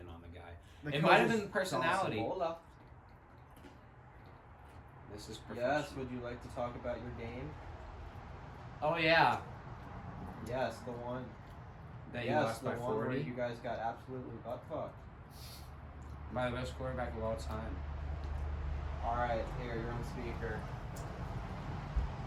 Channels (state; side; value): identical; both; correlation 1.00